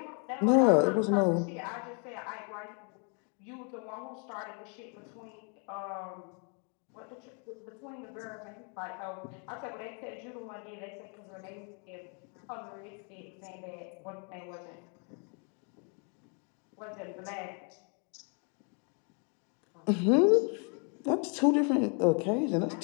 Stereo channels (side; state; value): right; quieter; 38.1 dB